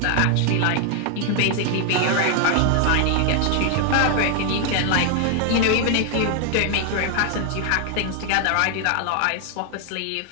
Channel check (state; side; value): different; both; correlation 0.00